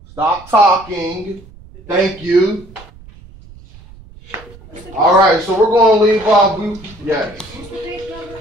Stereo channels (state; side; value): noise; right; rumble, 21 dB below the sound